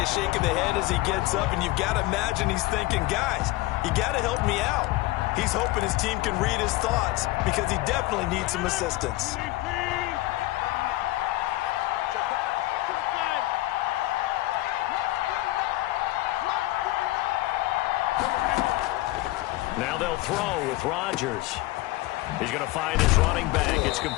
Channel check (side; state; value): right; quieter; 18.7 dB